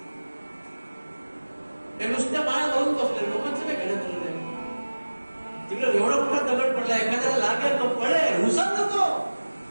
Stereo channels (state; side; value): inverted; both; correlation -1.00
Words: ते नुसत्या माळा घालून बसले, लोकांचं काय घेणं दिलं नाही. तिकडे एवढा मोठा दगड पडला, एखाद्याला लागेल तो पडेल, उसळ नको